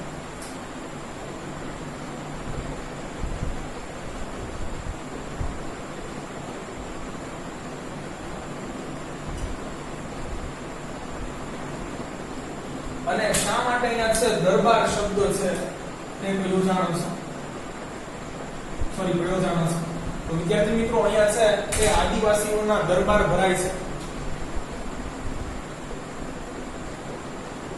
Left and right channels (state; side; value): identical; both; correlation 1.00